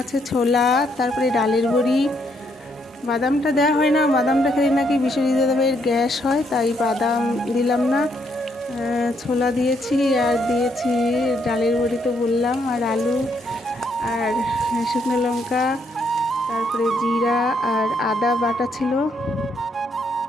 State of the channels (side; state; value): both; normal; correlation 0.73